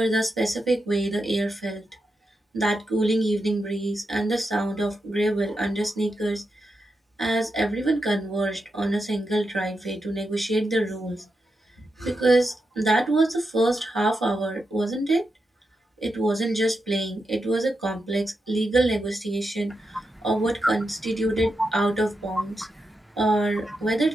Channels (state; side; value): normal; both; correlation 0.87